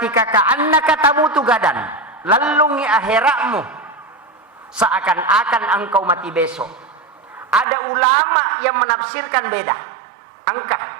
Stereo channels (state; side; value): drops out; left; at 7.7 s